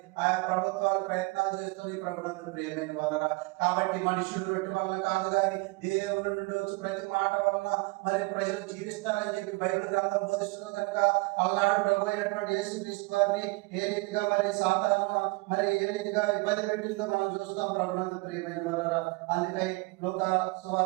ఆయా ప్రభుత్వాలు ప్రయత్నాలు చేస్తుంది ప్రభునందు ప్రియమైన వారలారా. కాబట్టి మనుషులు రొట్టె వలన కాదు కానీ దేవుని నుండి వచ్చి ప్రతి మాట వలన మరి ప్రజలు జీవిస్తారని చెప్పి బైబిల్ గ్రంథం బోధిస్తుంది కనుక అలనాడు ప్రభు అయినటువంటి యేసుక్రీస్తు వారిని ఏ రీతిగా మరి సాతాను మరి ఏ రీతిగా ఇబ్బంది పెట్టిందో మనం చూస్తాం ప్రభునందు ప్రియమైన వారలారా. అందుకై లూకా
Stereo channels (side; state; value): left; quieter; 25.6 dB